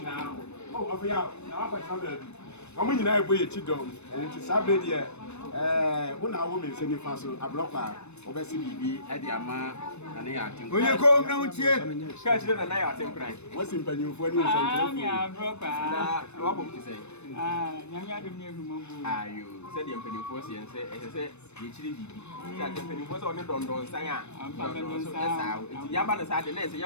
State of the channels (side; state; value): right; late; 0.81 ms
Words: now oh of ya na wa kwa omo nyina ebo ye chidom and it is sabre de una wo me se ni fa so ablokwa obesi bibi e de ama na ne ya atem oye ko na untie ka chire na ya atem kran wasi mpanyimfo ni nsantre ni ablokwa na wa bom ti sei nyanya dem ne humambu ayo se de mpanyimfo se yense se ye chire bibi sa de mpanyimfo se oni dondon san a ampa dondon san sa ya ba na sa de na se